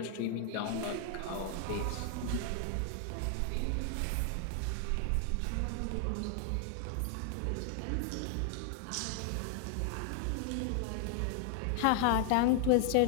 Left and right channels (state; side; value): different; both; correlation 0.00